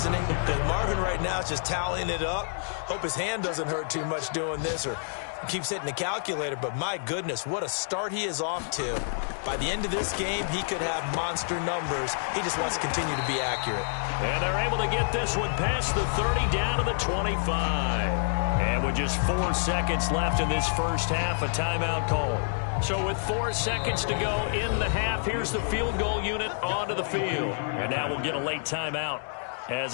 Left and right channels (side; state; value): right; silent; digital silence